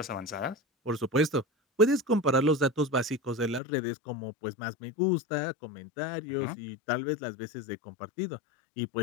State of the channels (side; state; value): right; drops out; at 3.6 s